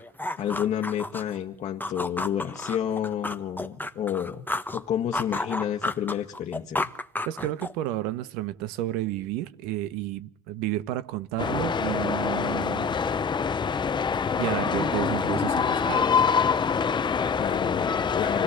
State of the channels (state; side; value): quieter; right; 3.4 dB